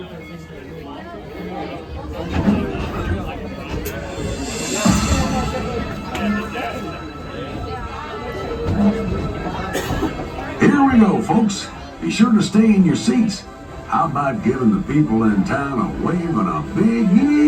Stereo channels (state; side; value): identical; both; correlation 1.00